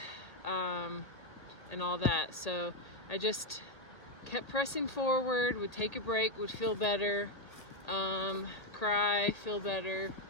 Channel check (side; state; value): right; late; 1.8 ms